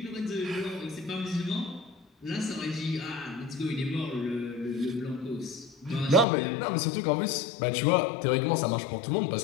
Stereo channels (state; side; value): drops out; right; at 6.2 s